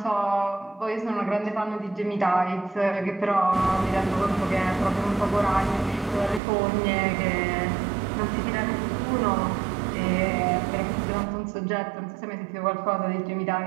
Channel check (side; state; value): left; drops out; at 6.4 s